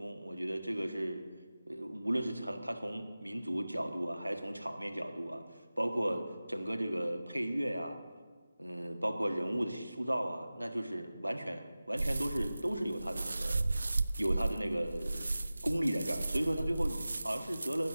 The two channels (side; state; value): both; inverted; correlation -0.96